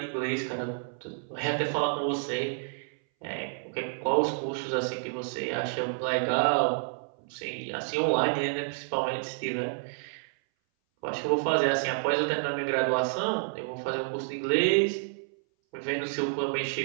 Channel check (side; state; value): left; silent; 58 dB below the other